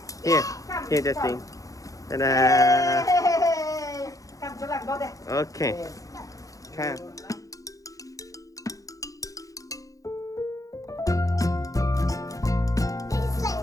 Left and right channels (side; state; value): right; late; 0.17 ms